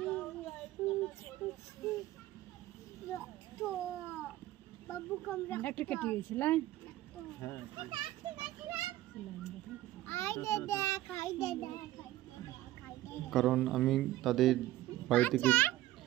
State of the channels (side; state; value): left; quieter; 15.6 dB